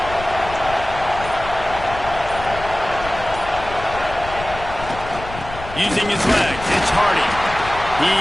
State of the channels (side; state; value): left; noise; rumble, 12 dB below the sound